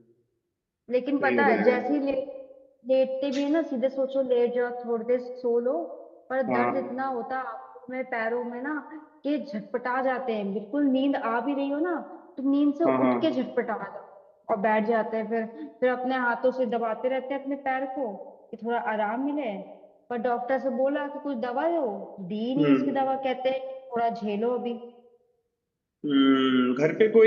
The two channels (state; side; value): identical; both; correlation 1.00